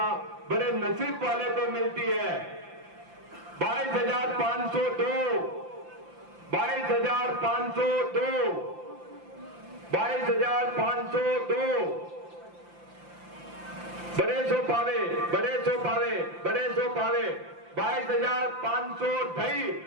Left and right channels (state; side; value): late; left; 5.8 ms